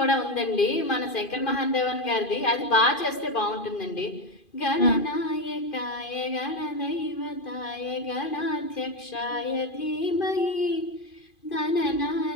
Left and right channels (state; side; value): late; right; 2.5 ms